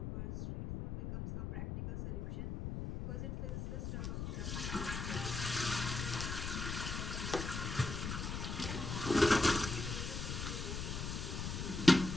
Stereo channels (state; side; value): noise; left; rumble, 4 dB below the sound